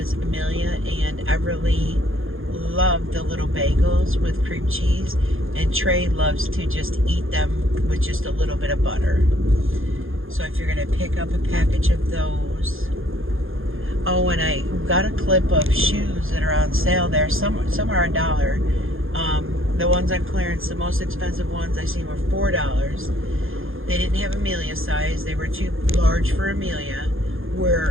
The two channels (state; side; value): late; left; 0.60 ms